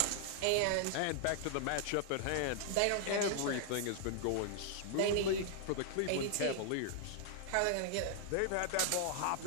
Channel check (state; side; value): different; both; correlation 0.00